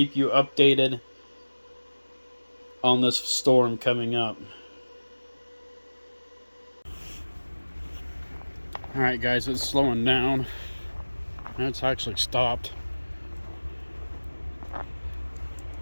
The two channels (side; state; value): both; inverted; correlation -1.00